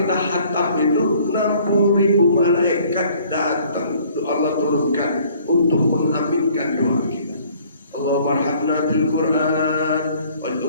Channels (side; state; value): both; inverted; correlation -0.57